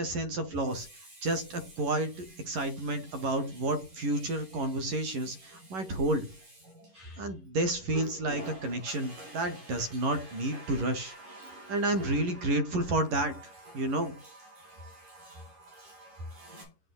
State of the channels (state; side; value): late; left; 11 ms